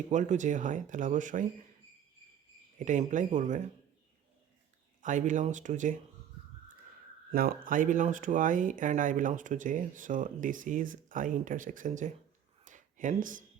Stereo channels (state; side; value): quieter; left; 9.6 dB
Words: ইকুয়াল টু জে হয় তাহলে অবশ্যই এটা ইমপ্লাই করবে I belongs to J. Now I belongs to I and I belongs to J, so this is I intersection J. Hence